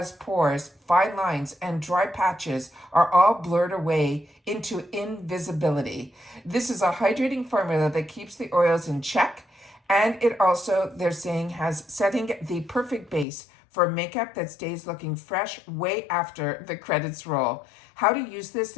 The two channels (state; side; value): drops out; right; at 13.2 s